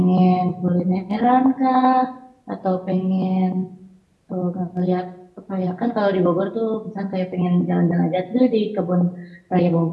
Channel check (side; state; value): both; identical; correlation 1.00